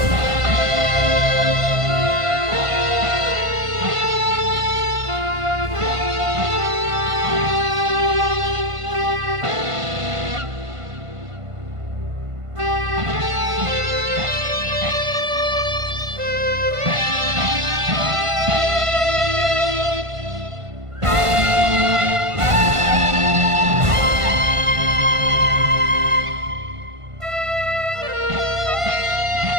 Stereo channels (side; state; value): left; late; 1.5 ms